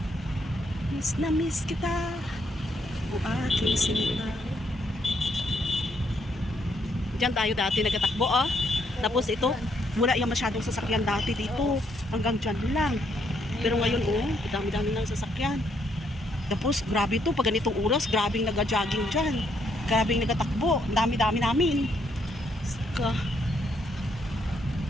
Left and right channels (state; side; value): normal; both; correlation 0.73